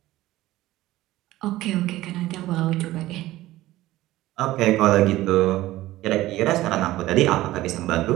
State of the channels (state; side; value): quieter; left; 16.4 dB